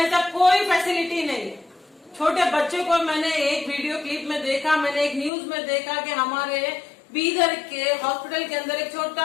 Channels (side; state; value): right; drops out; at 5.3 s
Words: कोई फैसिलिटी नहीं है। छोटे बच्चे को मैंने एक वीडियो क्लिप में देखा, मैंने एक न्यूज में देखा कि हमारे बीदर के हॉस्पिटल के अंदर एक